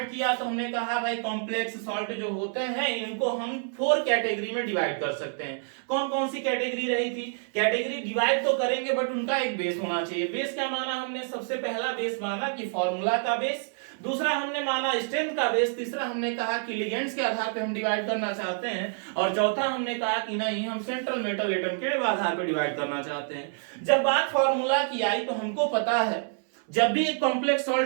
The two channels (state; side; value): silent; left; 60 dB below the other